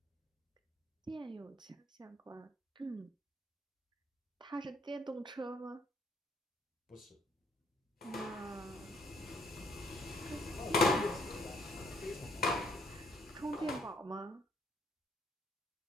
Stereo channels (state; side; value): normal; both; correlation 0.66